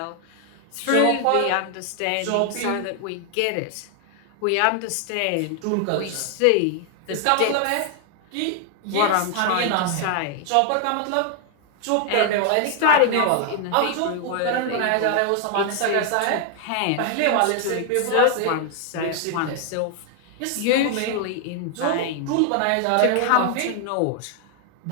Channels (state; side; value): different; both; correlation 0.00